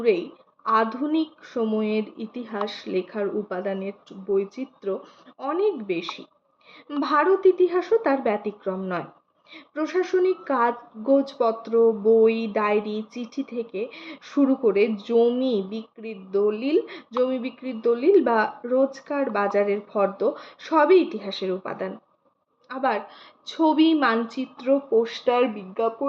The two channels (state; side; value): identical; both; correlation 1.00